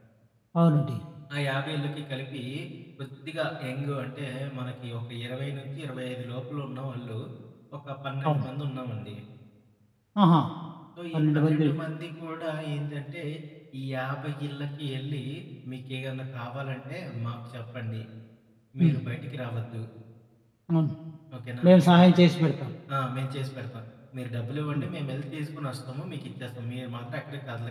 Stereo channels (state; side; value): identical; both; correlation 1.00